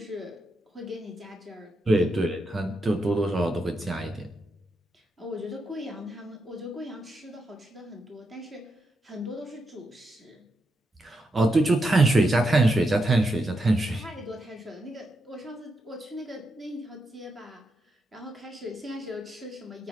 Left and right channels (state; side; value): normal; both; correlation 0.84